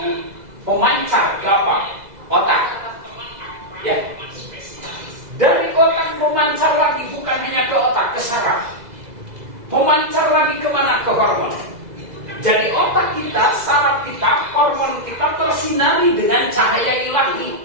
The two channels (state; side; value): late; left; 2.0 ms